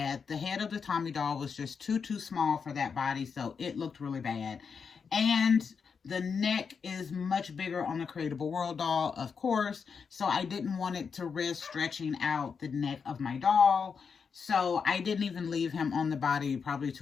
The head of the Tommy doll was just too small for that body, so it looked really bad. And the neck is much bigger on the Creatable World doll, of course, so I didn't want it to risk stretching out the neck of my doll. So I didn't even leave him on the body probably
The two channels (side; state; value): right; quieter; 5.9 dB